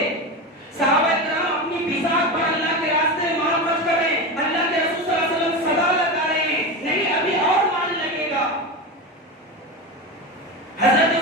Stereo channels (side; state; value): both; normal; correlation 0.21